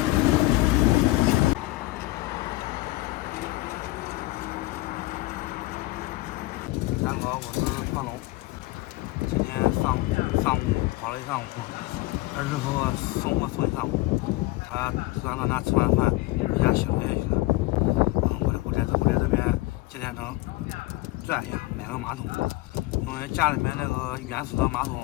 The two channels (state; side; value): quieter; right; 19.9 dB